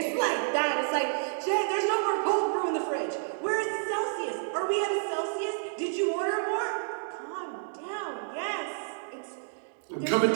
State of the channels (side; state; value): left; silent; digital silence